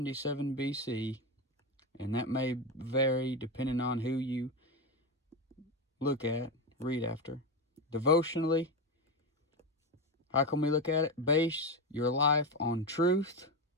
BC, and that may vary depending on who you look at, read after. Devotionally, how can we look at it? Base your life on truth,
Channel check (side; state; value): both; normal; correlation 0.15